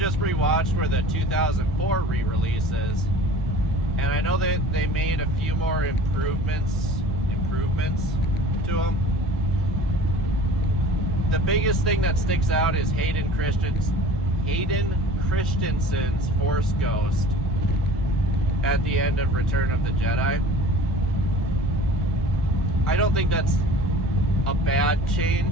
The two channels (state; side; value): normal; both; correlation 0.43